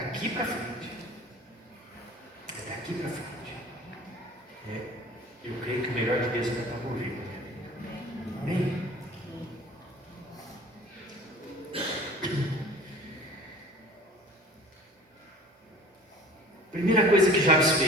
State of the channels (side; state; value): both; normal; correlation 0.45